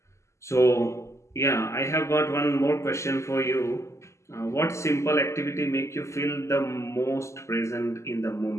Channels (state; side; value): late; right; 0.13 ms